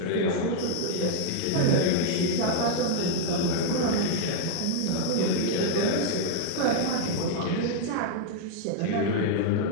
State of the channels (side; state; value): both; different; correlation 0.00